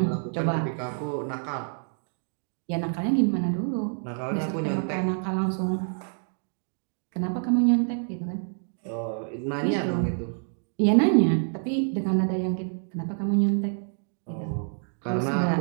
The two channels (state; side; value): silent; left; 60 dB below the other